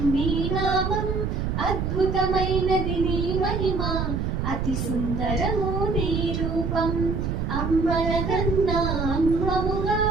నీ నామం, అద్భుతమైనది నీ మహిమ, అతి సుందరము నీ రూపం. అమ్మలగన్నా అమ్మముగా,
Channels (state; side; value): noise; right; rumble, 1 dB below the sound